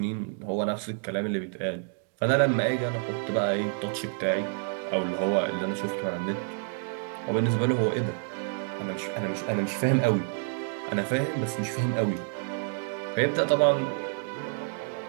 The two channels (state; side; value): silent; left; 59 dB below the other